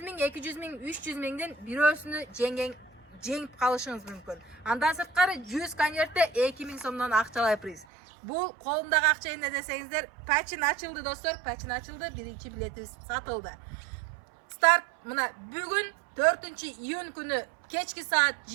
миң, 200 миң, 300 миңден бирөөсүнү жеңип калышыңыз мүмкүн. Андан сырткары 100 конвертте 2000 сомдон акчалай приз. Бул колумдагы акча эмне десеңиздер, пачин ачылды достор, пачин ачылды, биринчи билетибиз сатылды. Старт мына бүгүн 4-июнь күнү кечки саат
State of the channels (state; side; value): drops out; left; at 7.9 s